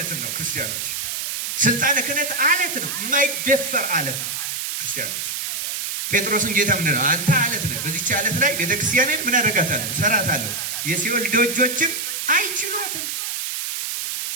ነው። ክርስቲያኖች ስልጣነ ክህነት አለት ነው፣ የማይደፈር አለት ነው። ክርስቲያኖች ጴጥሮስን ጌታ ምንድን ነው? አንተ አለት ነህ፣ በዚች አለት ላይ ቤተክርስቲያንን ምን አደርጋታለሁ? ሰራታለሁ፣ የሲኦል ደጆችም አይችሏትም።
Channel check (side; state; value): right; noise; hiss, 3 dB below the sound